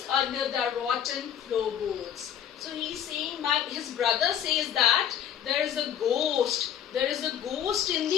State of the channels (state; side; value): quieter; right; 9.6 dB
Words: under the rotten floorboards. So he's saying his brother says that there is a ghost in